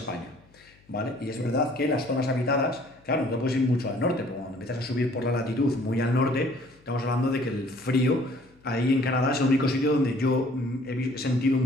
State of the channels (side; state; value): left; noise; hum, 30 dB below the sound